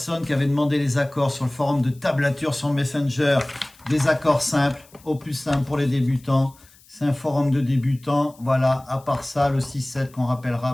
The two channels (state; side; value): noise; left; hiss, 27 dB below the sound